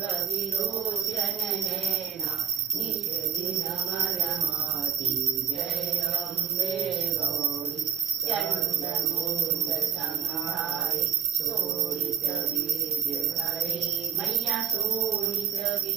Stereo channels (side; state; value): left; quieter; 8.3 dB